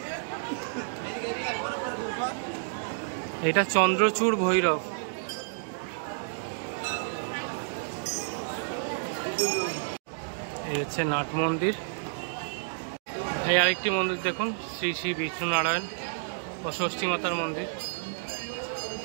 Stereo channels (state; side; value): silent; left; digital silence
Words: এটা চন্দ্রচূড় ভৈরব। এই হচ্ছে নাট মন্দির। এই আরেকটি মন্দির দেখুন, শ্রী শ্রী বিষ্ণু নারায়ণ ও ষষ্ঠী মাতার মন্দির।